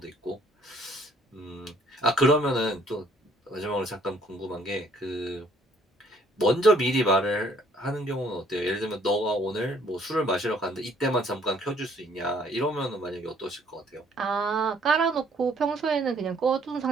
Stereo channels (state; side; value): normal; both; correlation 0.62